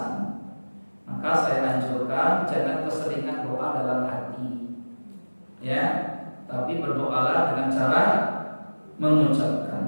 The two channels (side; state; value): both; inverted; correlation -1.00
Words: Maka saya anjurkan jangan keseringan doa dalam hati, ya. Tapi berdoalah dengan cara